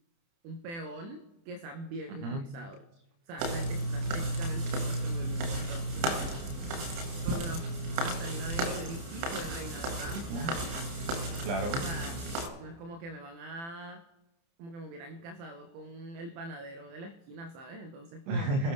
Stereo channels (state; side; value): late; left; 30 ms